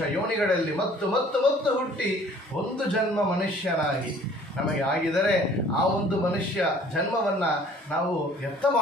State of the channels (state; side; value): normal; both; correlation 0.53